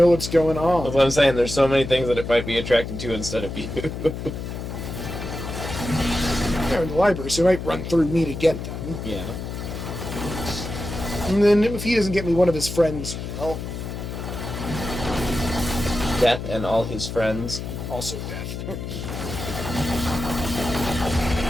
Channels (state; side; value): noise; left; hum, 7 dB below the sound